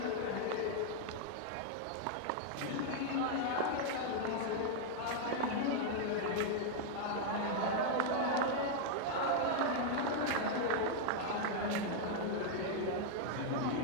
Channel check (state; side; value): different; both; correlation 0.00